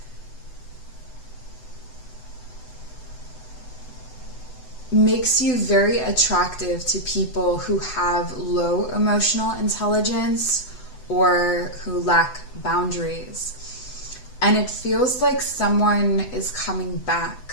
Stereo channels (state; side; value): late; right; 8.0 ms